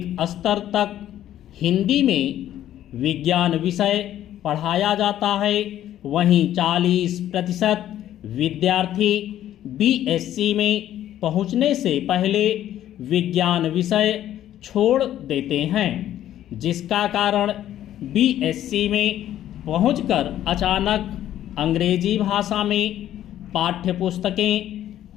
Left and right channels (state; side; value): quieter; right; 12.0 dB